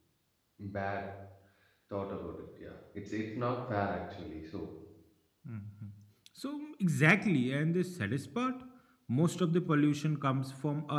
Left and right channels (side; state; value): both; identical; correlation 1.00